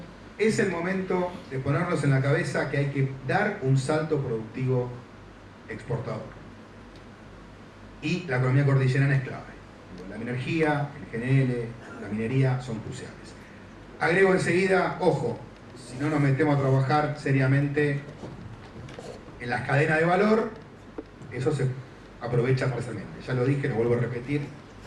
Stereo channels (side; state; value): both; identical; correlation 1.00